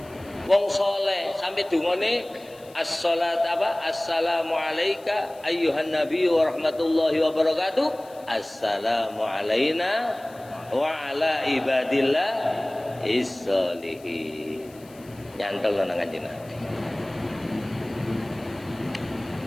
Wong soleh sampai dungane as-salat apa? Assalamu alayka ayyuhan nabi wa rahmatullahi wa barakatuh. Assalamu alayna wa ala ibadillah is-solihin. Nyantol nang Kanjeng Nabi.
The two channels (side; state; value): left; noise; hiss, 25 dB below the sound